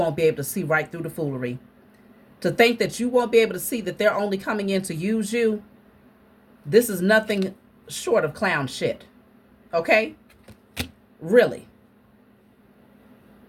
be able to see right through the foolery. To think that you won't be able to see that they're only coming in to use you. This is nothing short of clown shit. Okay? Really.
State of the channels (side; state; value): both; identical; correlation 1.00